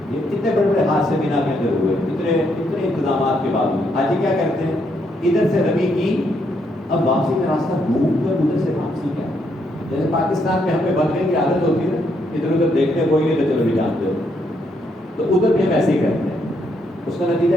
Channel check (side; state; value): both; normal; correlation 0.75